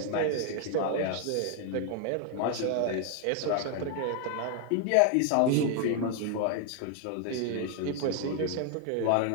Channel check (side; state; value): both; different; correlation 0.00